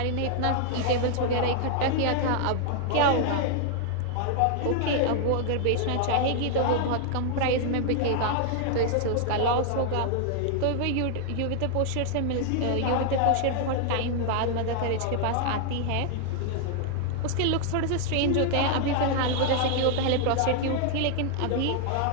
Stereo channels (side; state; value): both; different; correlation 0.00